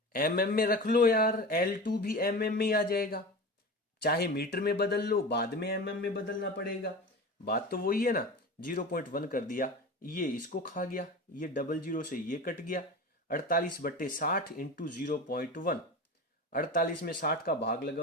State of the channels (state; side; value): normal; both; correlation 0.31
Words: mm में रख लो यार, L2 भी mm में ही आ जाएगा। चाहे मीटर में बदल लो, बाद में mm में बदलना पड़ेगा, बात तो वही है ना। 0.1 कर दिया, ये इसको खा गया, ये डबल जीरो से ये कट गया। 48/60 इंटू 0.1, 48 में 60 का भाग